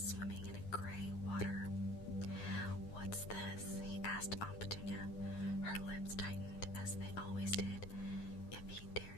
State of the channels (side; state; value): right; late; 9.7 ms